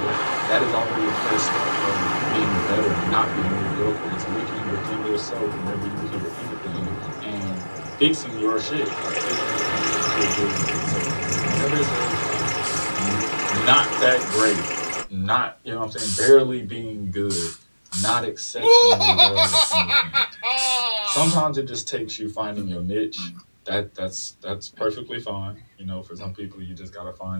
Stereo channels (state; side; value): inverted; both; correlation -1.00